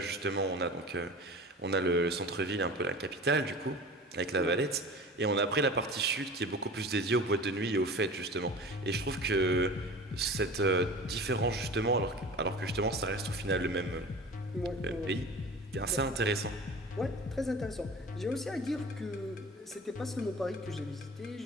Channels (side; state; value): both; normal; correlation 0.38